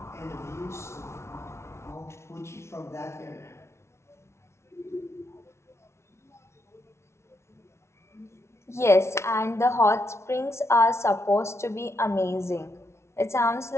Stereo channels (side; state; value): right; late; 0.13 ms